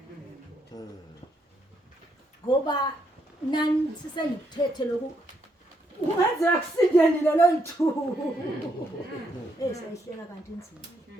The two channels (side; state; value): both; normal; correlation 0.76